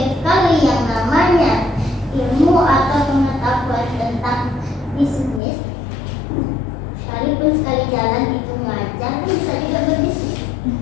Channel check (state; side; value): drops out; right; at 5.4 s